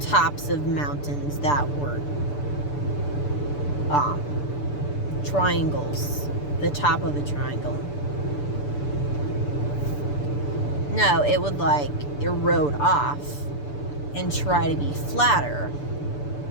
tops of mountains that were triangles, the top of a triangle. No, it would, like, erode off and try to be flatter.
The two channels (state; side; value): late; right; 6.9 ms